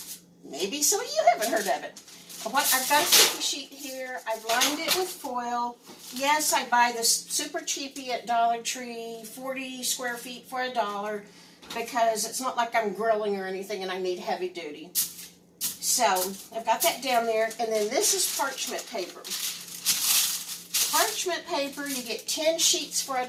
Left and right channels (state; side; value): identical; both; correlation 1.00